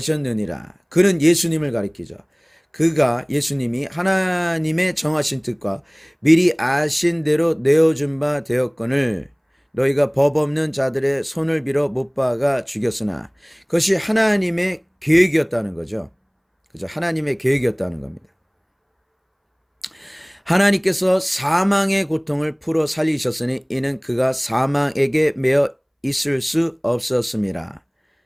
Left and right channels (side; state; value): both; identical; correlation 1.00